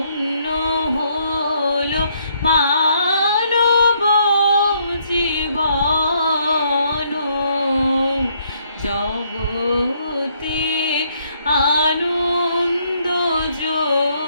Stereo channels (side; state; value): both; inverted; correlation -0.70